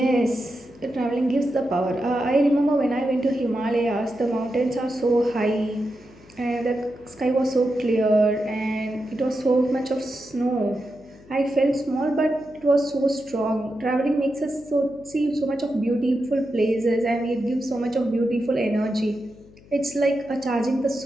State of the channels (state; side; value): noise; left; hum, 24 dB below the sound